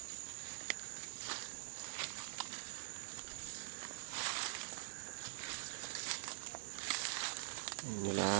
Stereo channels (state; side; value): silent; left; digital silence